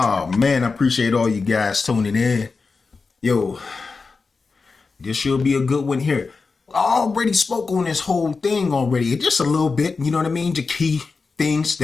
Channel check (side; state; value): right; quieter; 4.4 dB